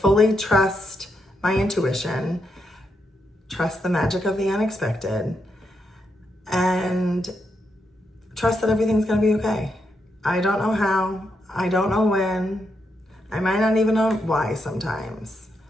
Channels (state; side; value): normal; both; correlation 0.82